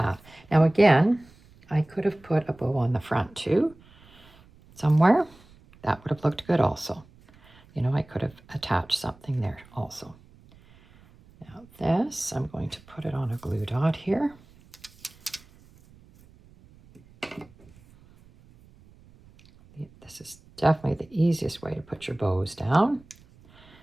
Now again, I could have put a bow on the front too, somewhere. That would have looked good also. You know, I could have attached something there also. Now this, I'm going to put it on a glue dot here. This is definitely the easiest way to put your bows down.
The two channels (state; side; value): noise; right; rumble, 26 dB below the sound